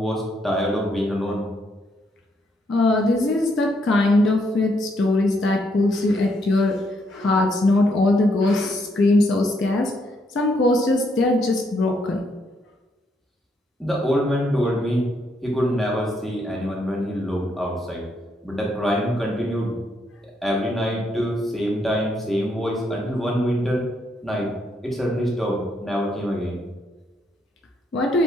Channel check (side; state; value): both; normal; correlation 0.75